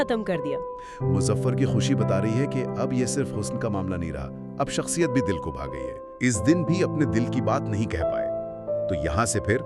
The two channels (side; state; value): both; identical; correlation 1.00